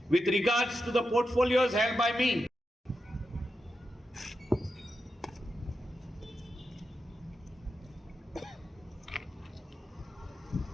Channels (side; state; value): both; normal; correlation 0.88